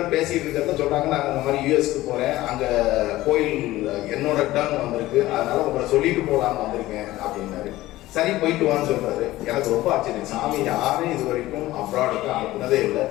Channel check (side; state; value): right; quieter; 16.8 dB